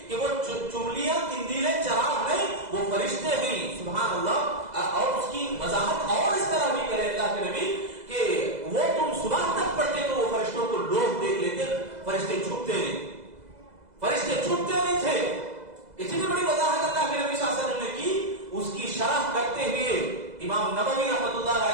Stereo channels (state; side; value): late; left; 2.0 ms